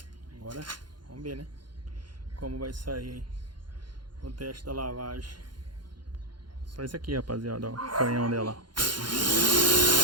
Agora, vamos ver, né? Como vai sair aí o teste da lavagem. Só isso aqui, rapaziada, ó. O canhão dela.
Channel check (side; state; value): left; late; 0.71 ms